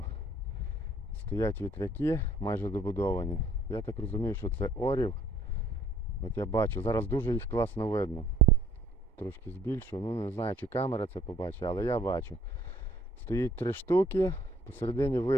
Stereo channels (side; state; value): both; normal; correlation 0.59